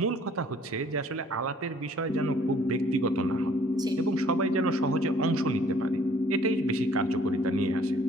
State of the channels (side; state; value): both; normal; correlation 0.58